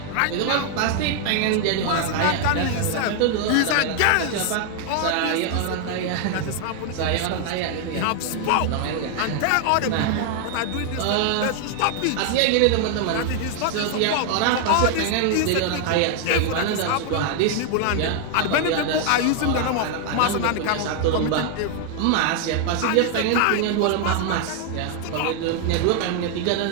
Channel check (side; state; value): both; different; correlation 0.00